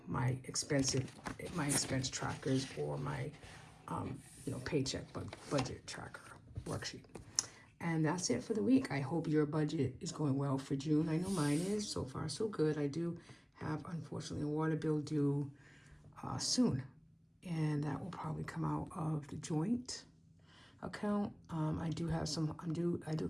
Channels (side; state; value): both; identical; correlation 1.00